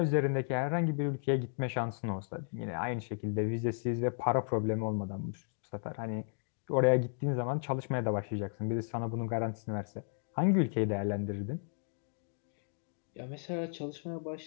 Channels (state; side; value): silent; right; digital silence